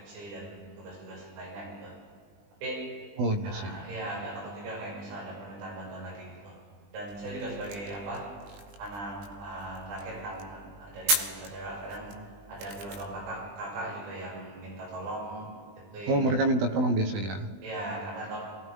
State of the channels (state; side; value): late; left; 20 ms